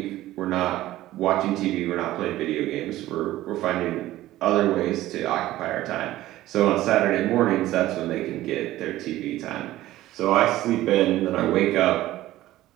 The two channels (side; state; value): left; quieter; 15.4 dB